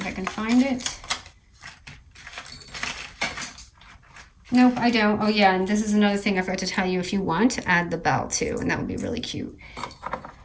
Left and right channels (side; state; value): both; identical; correlation 1.00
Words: I can find it. Nope, I don't. Oh yeah, and this is another thing I forgot to tell you. If you want, add the bell too, and that would be really cute.